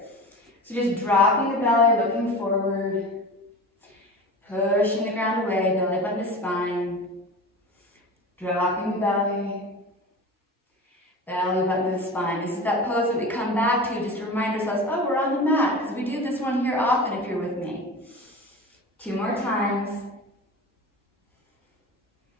So just dropping the belly, looking forward, pushing the ground away, belly button to spine, dropping the belly, belly button to the spine. This is that pose that we come back to just to remind ourselves, oh, we're on the mat, because we do this one here often if you're with me. 2 more times.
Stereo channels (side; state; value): both; normal; correlation 0.32